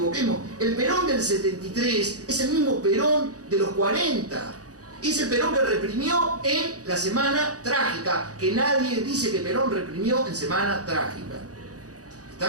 el Perón del 73 es el mismo Perón de los 40. Es el Perón que reprimió en la Semana Trágica, que nadie dice que Perón reprimió en Semana Trágica.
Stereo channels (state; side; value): late; left; 0.67 ms